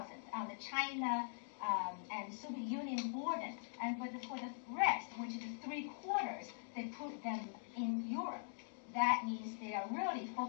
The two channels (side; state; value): right; silent; digital silence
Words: on the China and Soviet Union border, and for the rest, which is 3/4, they put them in Europe. That means they are really